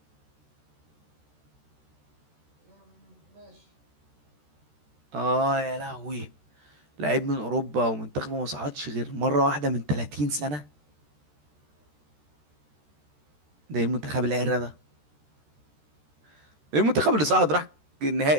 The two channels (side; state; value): left; late; 13 ms